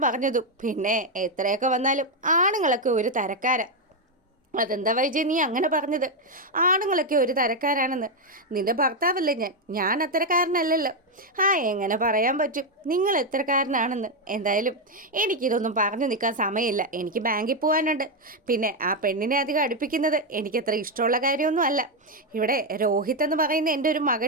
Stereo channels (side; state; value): both; normal; correlation 0.04